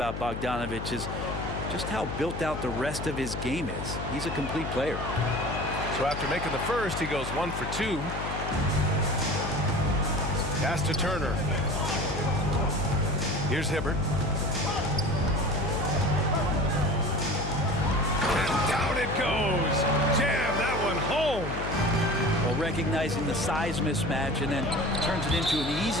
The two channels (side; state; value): left; noise; hum, 6 dB below the sound